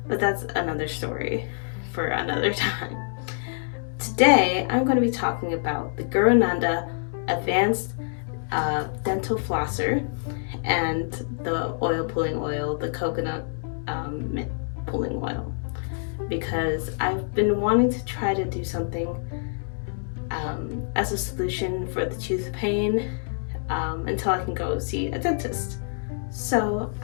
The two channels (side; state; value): right; silent; 61 dB below the other